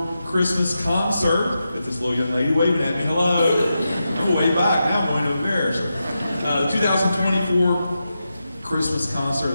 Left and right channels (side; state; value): both; inverted; correlation -0.88